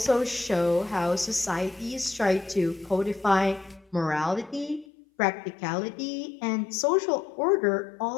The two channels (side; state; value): right; drops out; at 4.9 s